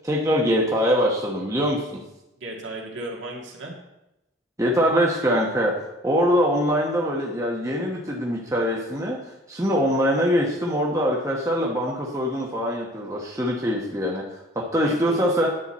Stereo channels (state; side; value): normal; both; correlation 0.50